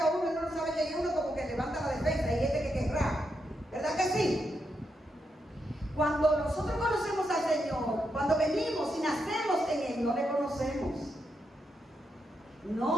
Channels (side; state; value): both; normal; correlation 0.83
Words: a uno y uno no sabe quién es, uno como que levanta la defensa, y este que querrá. ¿Verdad que sí? Cuando nosotros conocemos al Señor, cuando venimos y nacemos en Él, no le conocemos.